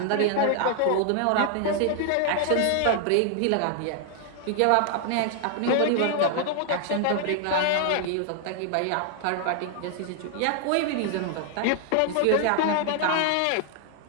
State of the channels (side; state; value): both; different; correlation 0.00